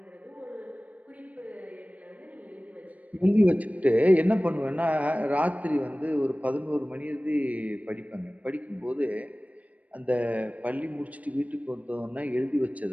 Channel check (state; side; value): late; left; 0.070 ms